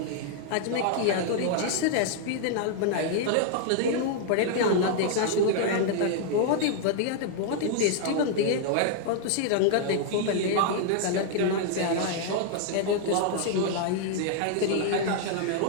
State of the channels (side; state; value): both; different; correlation -0.01